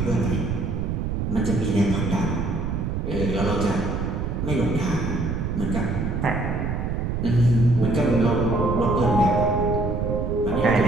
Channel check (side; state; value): right; noise; rumble, 2 dB below the sound